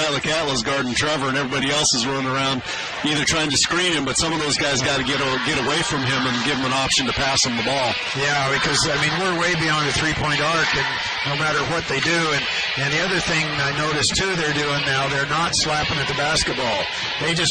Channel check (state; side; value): identical; both; correlation 1.00